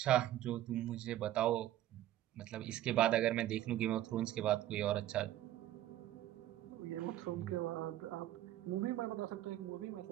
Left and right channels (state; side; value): quieter; left; 13.5 dB